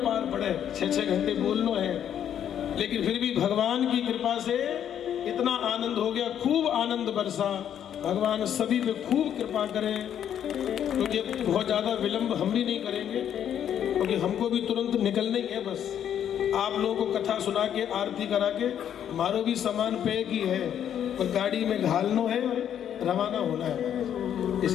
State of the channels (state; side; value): quieter; right; 9.6 dB